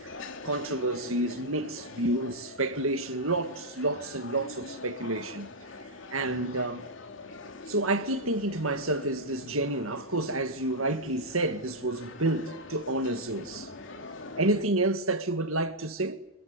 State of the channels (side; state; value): both; normal; correlation -0.05